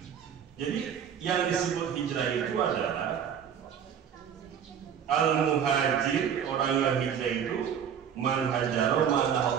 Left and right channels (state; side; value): quieter; left; 8.3 dB